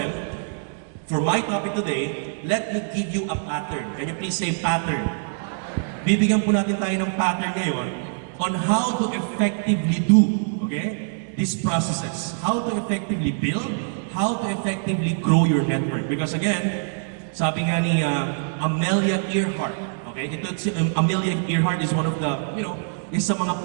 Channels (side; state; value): left; silent; digital silence